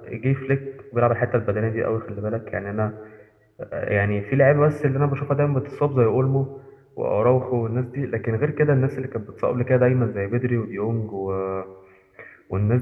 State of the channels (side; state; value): both; identical; correlation 1.00